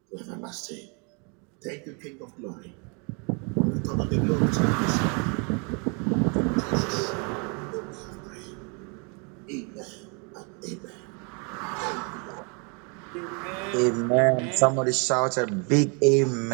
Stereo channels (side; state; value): left; quieter; 34.7 dB